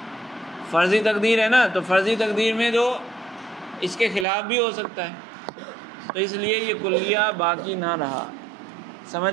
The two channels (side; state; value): left; drops out; at 4.2 s